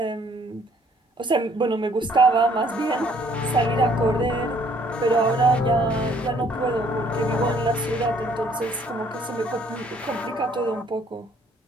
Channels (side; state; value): both; normal; correlation 0.62